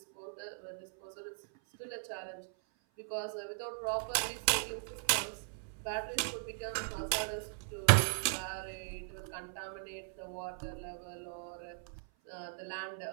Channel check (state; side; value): silent; left; 52 dB below the other